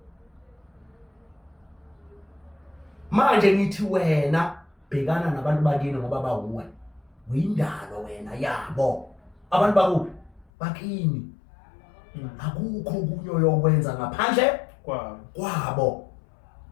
manje ngithi wena bhekana nabantu bakini ngoba bawuwe uyindalo wena yabo abantu bakuphi bakini akukho kunyo yokwenza ngaphandle kwabo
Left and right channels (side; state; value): right; drops out; at 10.5 s